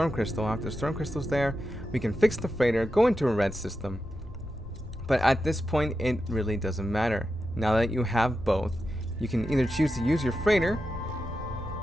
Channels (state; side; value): normal; both; correlation 0.89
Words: crystal. After the storm crystal's there, we can fix the freighter, go into a red system. But at this point, it really doesn't matter. Now that you have both, you can either choose to use your freighter